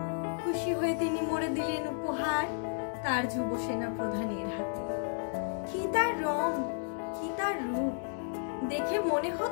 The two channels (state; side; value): silent; right; digital silence